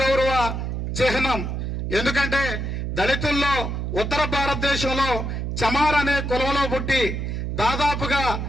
చిహ్నం. ఎందుకంటే దళితుల్లో ఉత్తర భారతదేశంలో చమార్ అనే కులంలో పుట్టి దాదాపుగా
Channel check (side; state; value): right; noise; hum, 3 dB below the sound